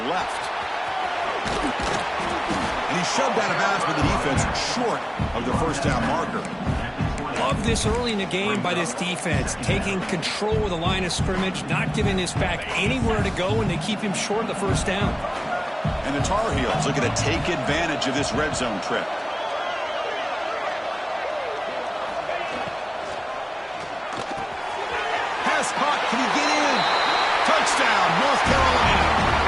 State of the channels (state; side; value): identical; both; correlation 1.00